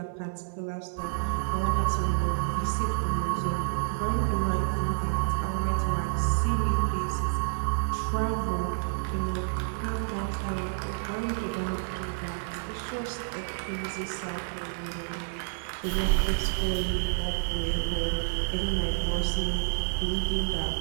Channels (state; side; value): silent; left; 57 dB below the other